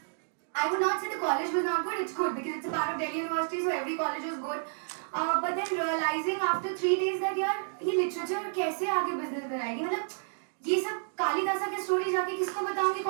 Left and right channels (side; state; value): left; silent; digital silence